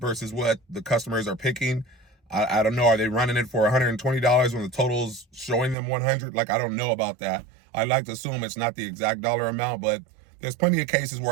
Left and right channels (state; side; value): drops out; left; at 5.8 s